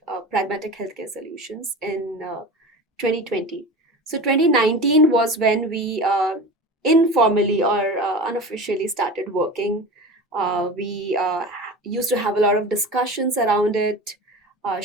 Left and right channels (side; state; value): both; normal; correlation 0.32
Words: Pragmatech Healthcare Solutions in 2020. So, 2019 was when we informally or unofficially started working. We used to have a lot of discussions around it,